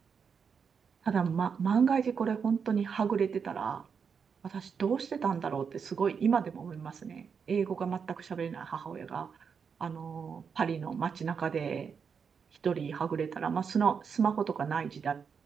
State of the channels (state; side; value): quieter; left; 6.3 dB